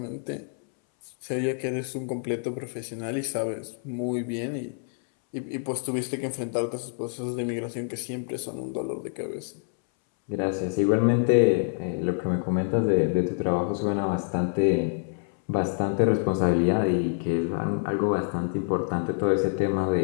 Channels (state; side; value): silent; right; 60 dB below the other